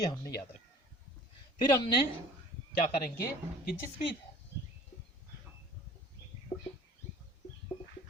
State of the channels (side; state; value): both; normal; correlation 0.47